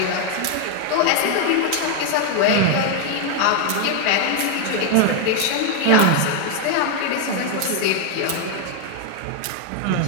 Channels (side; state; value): both; different; correlation 0.00